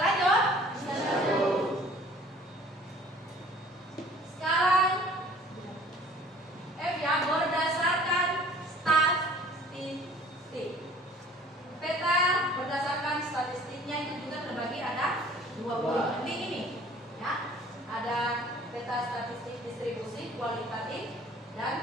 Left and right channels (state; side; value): normal; both; correlation 0.52